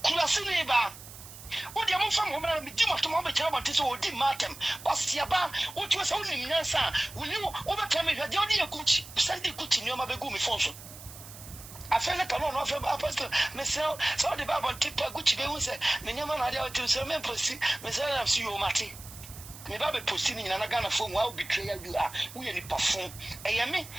Kulasiniba. What the most woman be much to mom about this or did Martin, Bastiaba, what was only Nansa, will you overcome it? The only Gucci, send the Gucci in your Mabegumi function. I feel like I don't know from Apostle, myself, so the Bible tip Gucci, they will say, Minyaman had to say, Memphis, Messiah, see you, Marty. Me Baby posting in an Agana phone while betrayal you are, we any perform. Ayami,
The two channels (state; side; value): noise; right; hiss, 16 dB below the sound